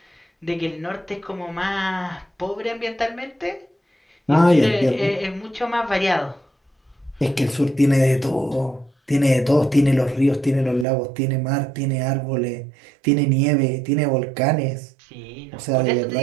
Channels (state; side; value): drops out; left; at 10.9 s